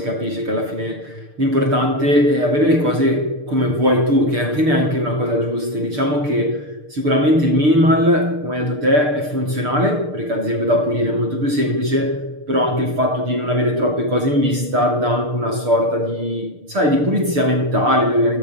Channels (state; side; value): late; left; 6.7 ms